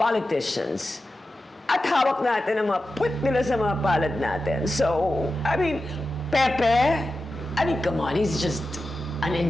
At hawak natin ang mga puwet nila sa mga palad natin. So, I mean, Pepe, come on, he's just an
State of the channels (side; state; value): both; normal; correlation 0.92